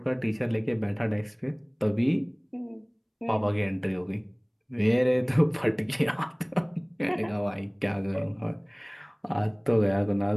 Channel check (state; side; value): identical; both; correlation 1.00